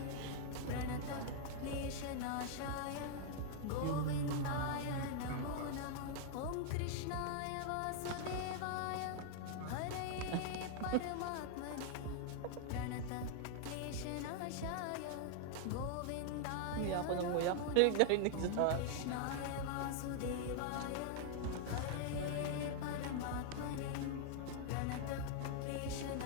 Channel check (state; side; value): different; both; correlation 0.00